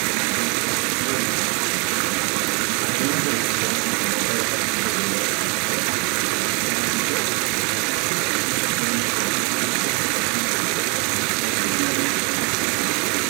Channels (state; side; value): quieter; left; 33.5 dB